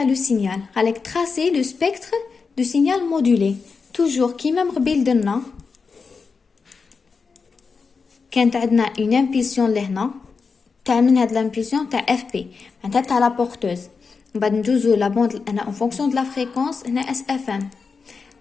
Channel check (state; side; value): quieter; right; 5.0 dB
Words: لو سينيال. قالك تراسي لو سبيكتر دو سينيال مودولي توجور كيما مقبل درنا كانت عندنا اون امبولسيون لهنا تاع من هاد لامبولسيون تاع اف بي معناتها تاع لا بورتوز. من بعد ندوزو لا بوند هنا اون فونكسيون دو لا فريكونس. هنا اس اف ام